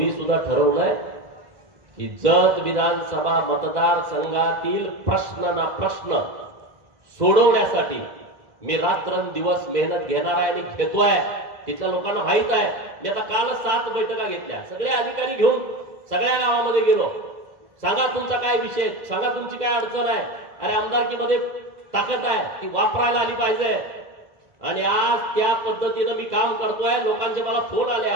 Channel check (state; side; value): late; left; 2.0 ms